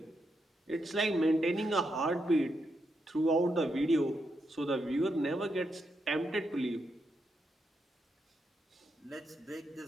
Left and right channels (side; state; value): both; normal; correlation 0.82